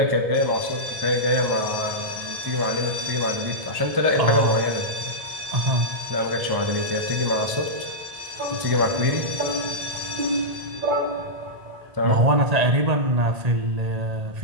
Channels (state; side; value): late; left; 1.7 ms